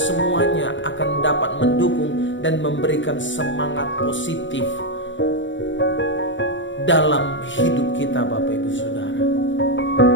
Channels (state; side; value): late; right; 0.55 ms